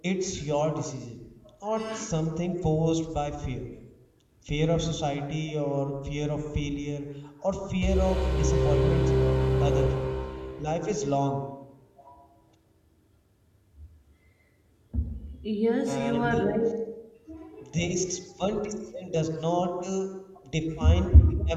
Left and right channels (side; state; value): both; identical; correlation 1.00